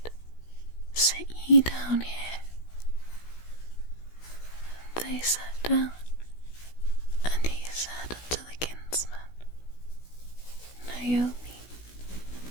Sit ye down here. And they sat down, and he said unto the kinsman, Naomi,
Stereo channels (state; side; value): late; right; 16 ms